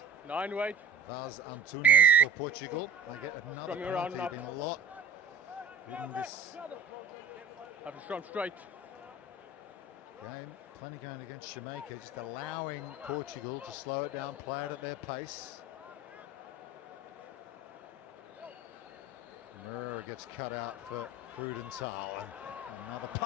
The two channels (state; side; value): quieter; left; 3.4 dB